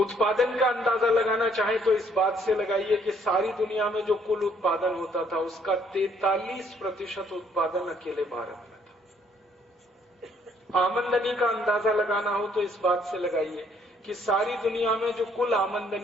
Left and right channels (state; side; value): normal; both; correlation 0.65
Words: का अंदाजा लगाना चाहें तो इस बात से लगाइए कि सारी दुनिया में जो कुल उत्पादन होता था उसका 43% उत्पादन अकेले भारत में था। आमदनी का अंदाजा लगाना हो तो इस बात से लगाइए कि सारी दुनिया में जो कुल